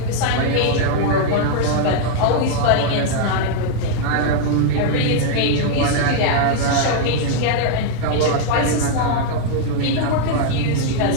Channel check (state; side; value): different; both; correlation 0.00